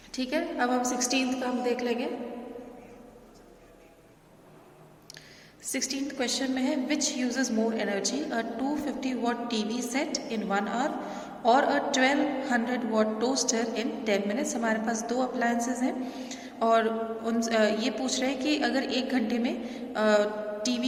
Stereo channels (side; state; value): both; identical; correlation 1.00